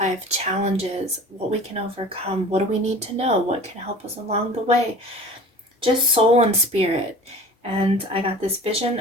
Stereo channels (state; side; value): normal; both; correlation 0.40